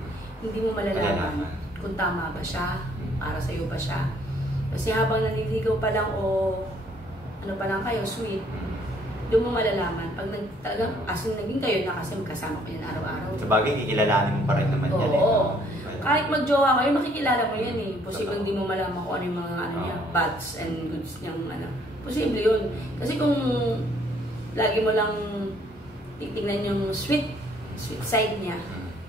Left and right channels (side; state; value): both; normal; correlation 0.63